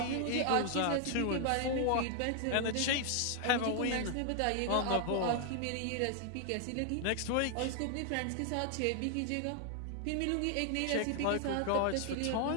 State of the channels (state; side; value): different; both; correlation 0.00